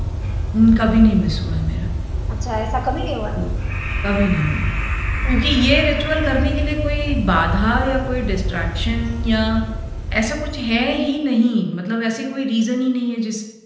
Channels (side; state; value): both; identical; correlation 1.00